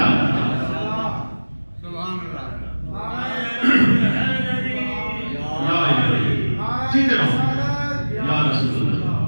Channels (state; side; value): inverted; both; correlation -1.00